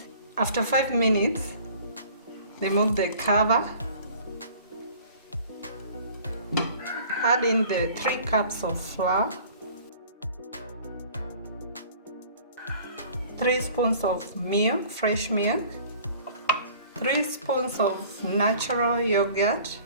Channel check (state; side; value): inverted; both; correlation -0.49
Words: After 5 minutes, remove the cover. Add in the 3 cups of flour, 3 spoons of milk, fresh milk, 3 spoons of natural yogurt,